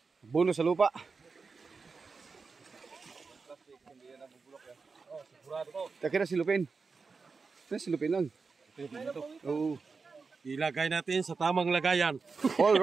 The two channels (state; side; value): quieter; left; 4.7 dB